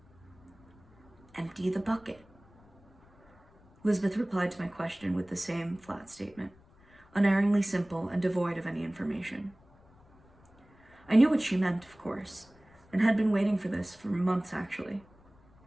Empty the bucket. Lisbeth replied to my question with the same flat statement, unerringly simple and devoid of any information. I knew what she meant, of course, and had been waiting for this for months, actually.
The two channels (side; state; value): left; noise; rumble, 28 dB below the sound